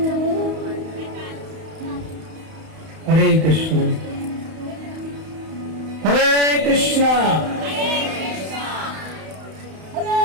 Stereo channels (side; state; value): left; late; 31 ms